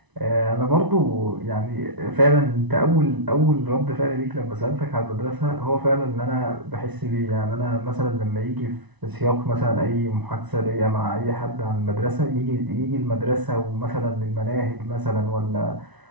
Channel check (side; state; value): left; late; 1.0 ms